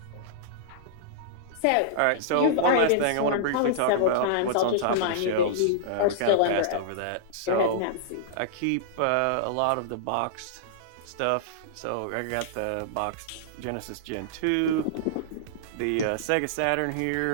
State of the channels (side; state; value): both; different; correlation -0.02